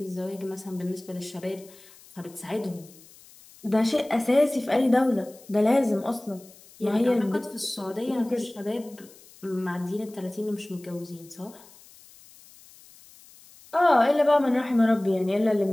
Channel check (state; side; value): noise; left; hiss, 24 dB below the sound